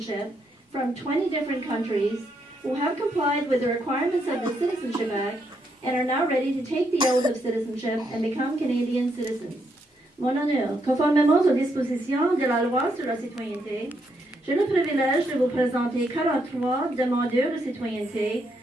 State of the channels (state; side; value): normal; both; correlation 0.77